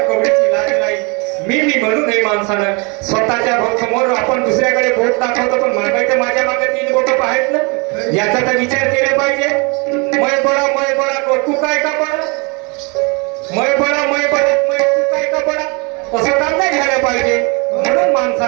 कवडीची लाज नाही, मी म्हणू नये माणसानं. स्वतःच्या समोर आपण दुसऱ्याकडे बोट दाखवतो, पण मागायचं माझ्या मागे 3 बोट आहेत ना, याचा तर विचार केला पाहिजे. मय बडा तू काय का बडा, मय बडा तू काय का बडा, असं काम नाही घ्यायला पाहिजे. म्हणून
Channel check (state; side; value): quieter; left; 31.1 dB